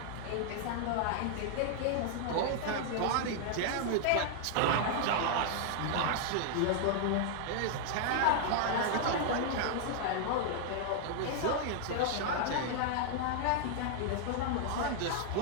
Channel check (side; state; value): both; different; correlation -0.01